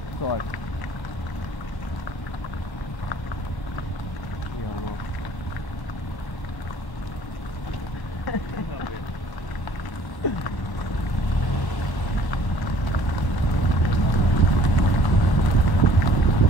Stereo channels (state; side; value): late; right; 1.0 ms